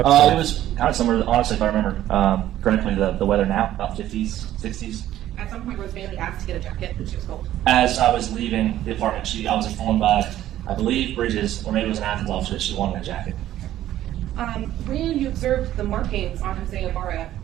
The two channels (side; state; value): left; quieter; 13.0 dB